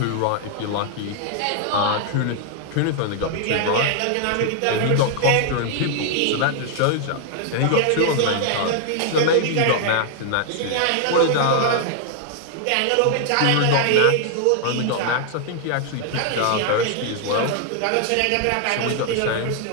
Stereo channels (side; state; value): both; different; correlation 0.00